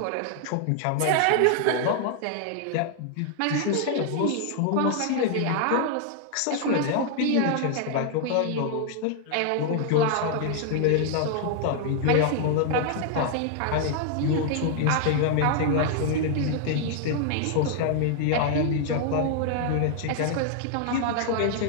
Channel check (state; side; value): different; both; correlation 0.00